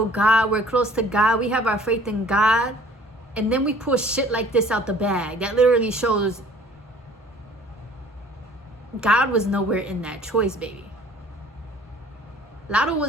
God, we're close to God, we have our faith in God, and then we pull shit like this out the bag. That literally shows God was nowhere in that choice, baby. Latto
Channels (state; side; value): normal; both; correlation 0.52